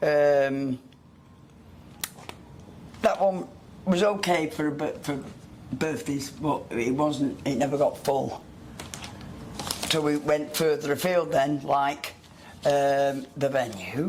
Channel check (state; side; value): identical; both; correlation 1.00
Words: one was okay for birthdays, but it wasn't. It never got full. So we went further afield then, like the